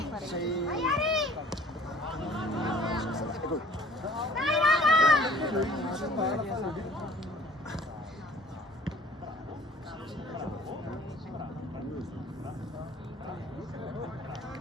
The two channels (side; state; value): both; normal; correlation 0.52